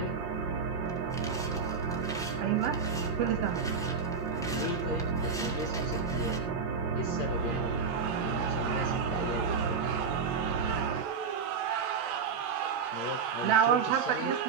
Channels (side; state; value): left; quieter; 5.5 dB